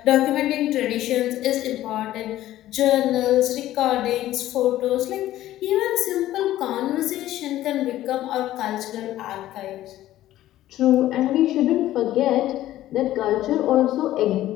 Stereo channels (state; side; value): quieter; right; 14.2 dB